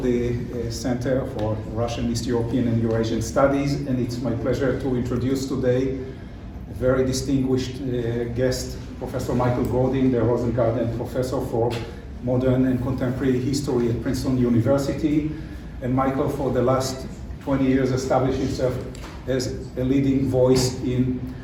the Center for Russian, East European and Eurasian Studies, and it's my pleasure to introduce today a very distinguished guest, Professor Michael Godin, the Rosengarten Professor for Modern and Contemporary History at Princeton University. And Michael, for the last 20 years, established himself as a leading voice in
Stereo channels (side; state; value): both; identical; correlation 1.00